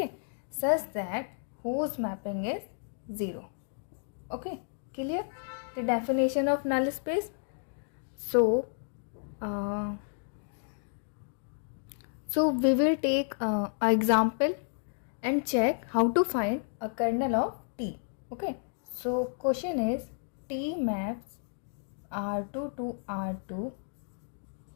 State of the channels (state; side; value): silent; right; digital silence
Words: such that whose mapping is 0. Okay, clear the definition of null space? So we will take an example and check how to find a kernel of T. Okay, so question is T maps R2 to R2